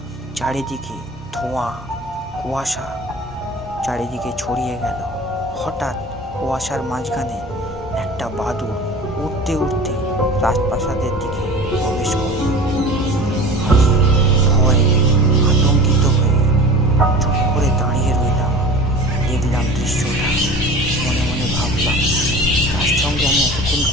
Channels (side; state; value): both; normal; correlation 0.38